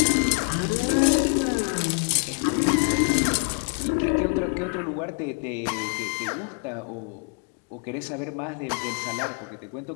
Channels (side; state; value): right; quieter; 36.5 dB